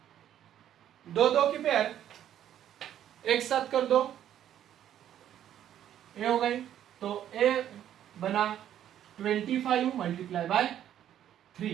दो की पेयर एक साथ कर दो, ए हो गई, तो ए बना 25 मल्टीप्लाई बाय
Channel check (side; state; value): left; quieter; 10.8 dB